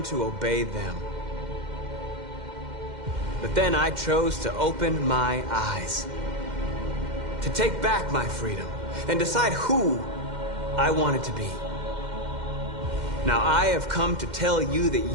to obey them. But then I chose to open my eyes, to take back my freedom, and decide who I wanted to be. Now I have come to tell you that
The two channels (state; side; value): late; left; 2.1 ms